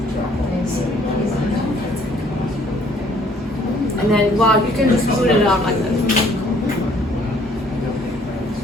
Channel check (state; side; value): normal; both; correlation 0.61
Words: and then wow, you can just put it out like this.